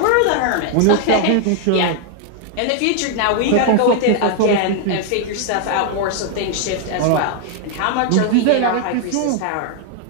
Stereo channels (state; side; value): different; both; correlation 0.00